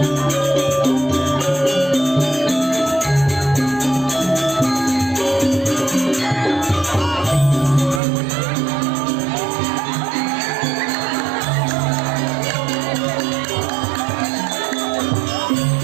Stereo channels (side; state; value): left; drops out; at 8.0 s